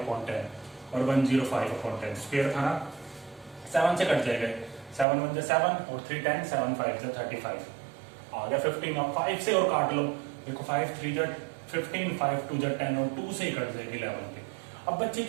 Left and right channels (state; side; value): drops out; left; at 5.1 s